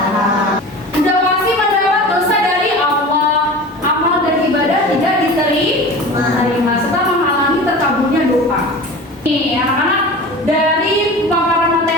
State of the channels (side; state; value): both; normal; correlation 0.35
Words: Sudah pasti mendapat dosa dari Allah. Amal dan ibadah tidak diterima serta menghalangi terkaburnya doa. Nih, anak-anak, dari paparan